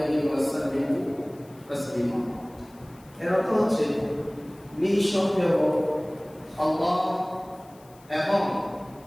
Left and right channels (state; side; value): noise; left; hiss, 28 dB below the sound